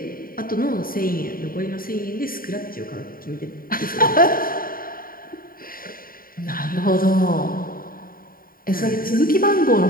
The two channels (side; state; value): right; late; 0.42 ms